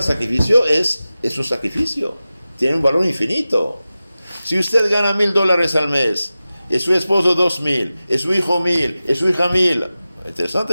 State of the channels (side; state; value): both; inverted; correlation -0.95